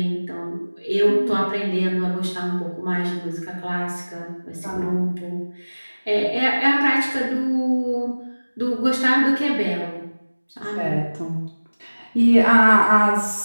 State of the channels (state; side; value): inverted; both; correlation -1.00